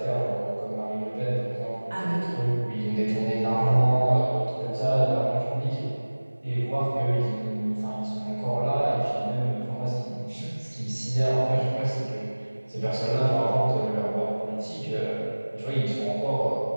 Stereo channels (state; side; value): inverted; both; correlation -1.00